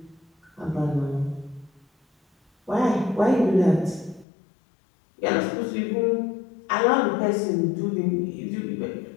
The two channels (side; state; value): right; drops out; at 4.2 s